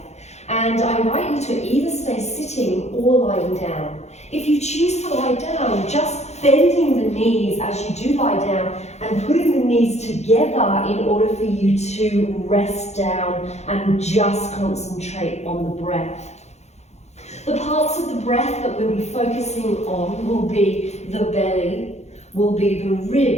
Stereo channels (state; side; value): late; right; 0.32 ms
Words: and I invite you to either stay sitting or lying down. If you choose to lie down, just bending the knees as you do lie down and putting the knees together in order for you to rest down and just concentrate on the breath. The parts of the breath that we'll be focusing on will be the belly, will be the